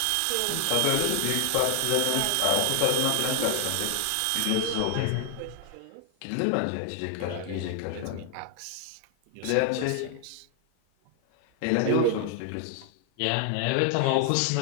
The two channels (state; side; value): different; both; correlation 0.00